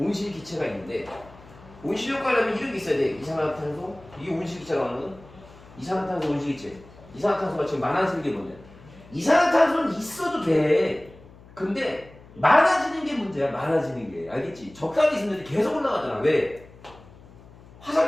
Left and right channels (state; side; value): noise; left; hum, 22 dB below the sound